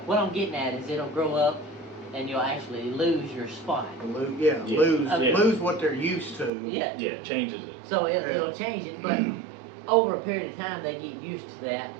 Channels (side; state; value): left; drops out; at 6.5 s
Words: I'm getting at is it'll grow up and you'll actually lose your spot. Yeah, Yeah. lose what they're used to. Yeah. Yeah, it changes it. So it'll change it, but over a period of time they get used to that.